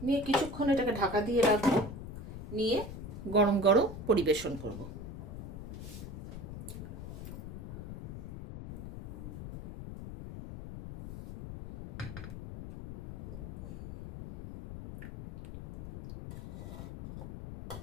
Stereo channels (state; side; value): noise; left; rumble, 10 dB below the sound